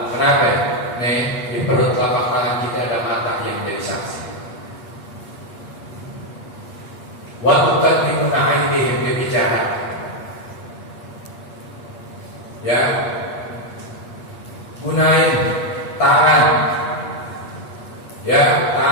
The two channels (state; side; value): late; right; 8.4 ms